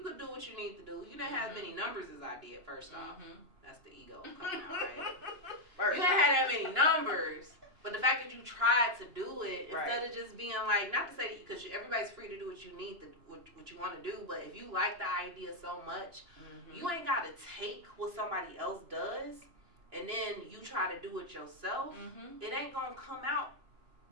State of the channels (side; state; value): left; late; 2.9 ms